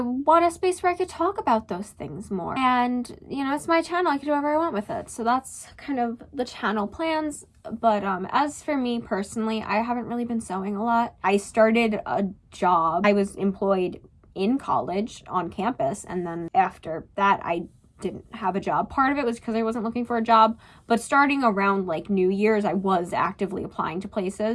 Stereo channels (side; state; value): both; identical; correlation 1.00